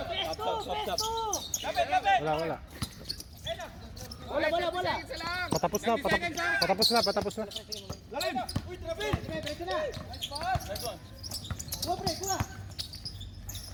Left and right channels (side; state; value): both; identical; correlation 1.00